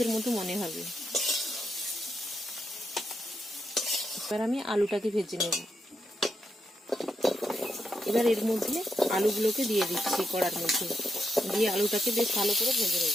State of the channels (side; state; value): both; normal; correlation 0.82